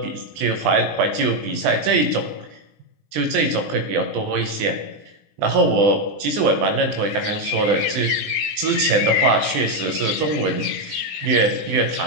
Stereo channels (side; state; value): left; late; 20 ms